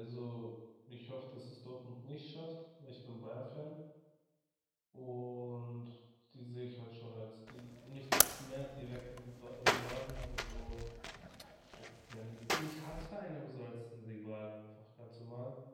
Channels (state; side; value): identical; both; correlation 1.00